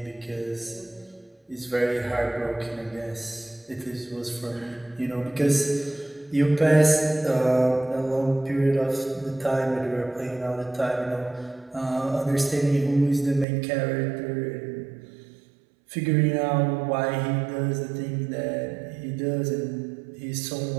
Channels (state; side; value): drops out; left; at 13.5 s